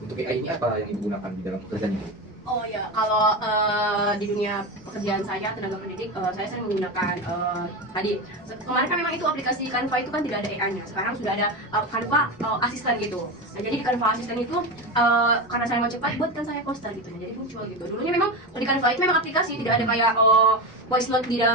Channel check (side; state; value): both; normal; correlation 0.20